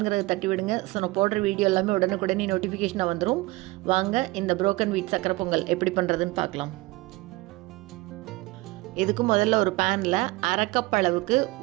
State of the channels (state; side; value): quieter; left; 21.6 dB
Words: தட்டி விடுங்க. ஸோ நான் போடுற வீடியோ எல்லாமே உடனுக்குடனே நோட்டிஃபிகேஷனாக வந்துடும். வாங்க இந்த புரோக்கன் வீட் சக்கரை பொங்கல் எப்படி பண்ணுறதுன்னு பார்க்கலாம். இதுக்கு முதல்ல ஒரு பேனில் அரை கப் அளவுக்கு